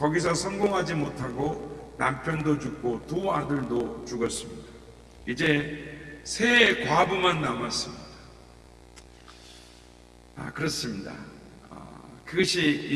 성공하지 못하고 남편도 죽고 두 아들도 죽었습니다. 이제 세 과부만 남았습니다. 그렇습니다. 그것이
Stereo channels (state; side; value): identical; both; correlation 1.00